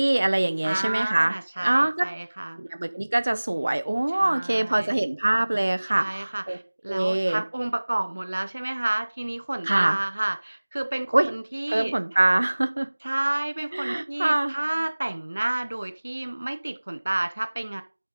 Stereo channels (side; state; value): both; inverted; correlation -1.00